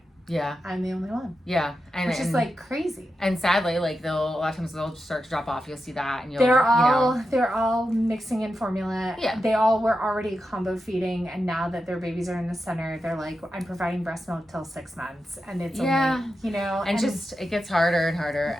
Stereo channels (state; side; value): normal; both; correlation 0.89